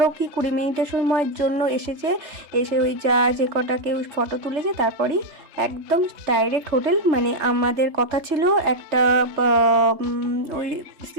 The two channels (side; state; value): left; late; 3.3 ms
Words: কি 20 মিনিটের সময়ের জন্য এসে ওই যে কটা কেউ ফটো তুলেছে তারপরেই একদম ডাইরেক্ট হোটেল। মানে আমাদের কথা ছিল একটা ওই